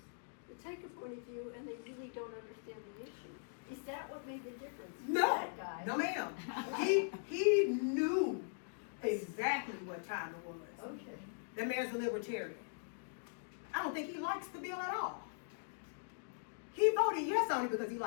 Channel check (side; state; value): right; silent; digital silence